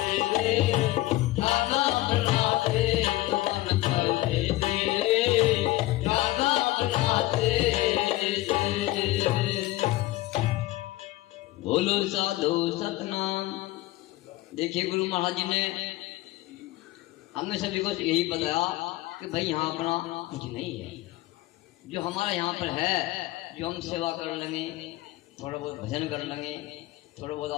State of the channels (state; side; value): quieter; right; 17.4 dB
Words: रे, जाना अपना देश मन परदेसी रे, जाना अपना देश। बोलो साधु सतनाम। देखिए गुरु महाराज जी ने हमने सभी को यही बताया कि भाई यहाँ अपना कुछ नहीं है, जो हमारा यहाँ पर है, जो हम सेवा कर लेंगे, थोड़ा बहुत भजन कर लेंगे, थोड़ा